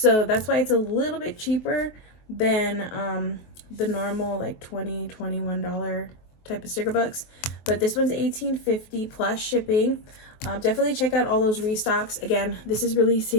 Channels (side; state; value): right; late; 23 ms